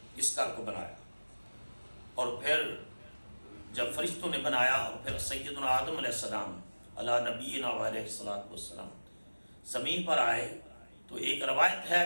اس گھر کو بنایا، اور پھر جب فرشتوں نے بنایا اور پھر سیدنا آدم علیہ السلام علی نبینا علیہ السلام زمین پر آئے، تو ایک روایت ہے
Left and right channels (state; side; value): inverted; both; correlation -1.00